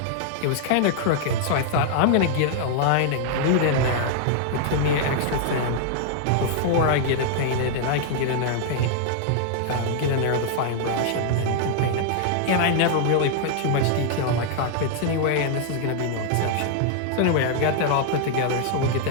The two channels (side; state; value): both; different; correlation 0.00